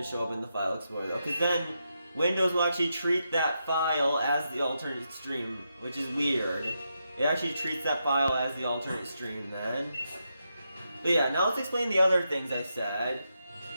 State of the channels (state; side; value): inverted; both; correlation -0.84